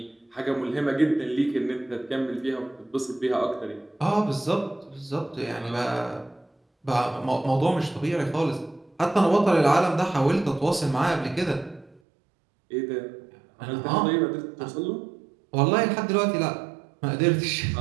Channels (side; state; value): left; drops out; at 12.0 s